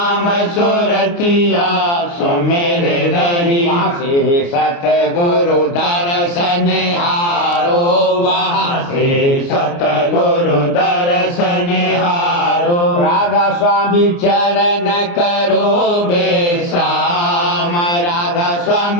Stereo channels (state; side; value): late; right; 29 ms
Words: सुरतिया सुमेर रही वहाँ से सतगुरु दर्शन हारो वहाँ से सतगुरु दर्शन हारो राधा स्वामी चरण करो विश्राम राधा